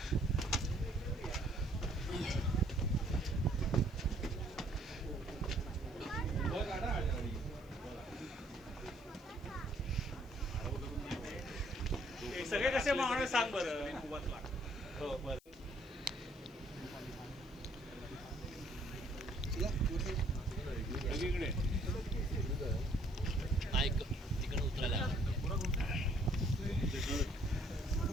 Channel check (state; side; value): noise; left; hiss, 29 dB below the sound